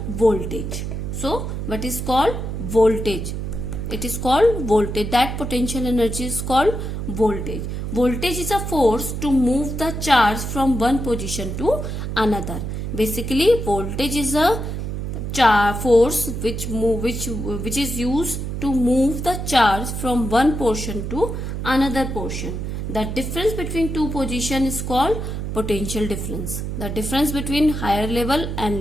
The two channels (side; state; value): right; noise; hum, 4 dB below the sound